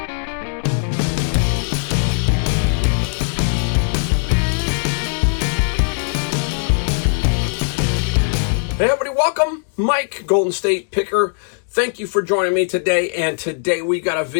Hey everybody, welcome. Mike, Golden State Picker. Thank you for joining me today. And today we got a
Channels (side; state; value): right; silent; digital silence